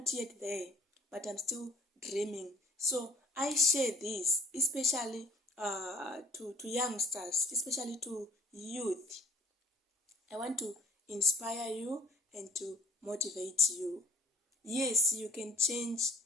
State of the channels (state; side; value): normal; both; correlation 0.52